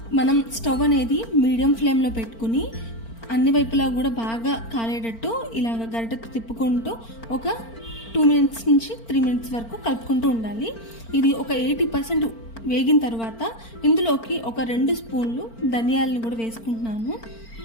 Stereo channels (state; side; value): late; right; 4.4 ms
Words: మనం స్టవ్ అనేది మీడియం ఫ్లేమ్లో పెట్టుకుని అన్ని వైపులా కూడా బాగా కాలేటట్టు ఇలాగ గరిటెతో తిప్పుకుంటూ ఒక 2 మినిట్స్ నుంచి 3 మినిట్స్ వరకు కలుపుకుంటూ ఉండాలి. ఇది ఒక 80% వేగిన తర్వాత ఇందులోకి ఒక 2 స్పూన్లు ధనియాలను కూడా వేసుకుంటున్నాను.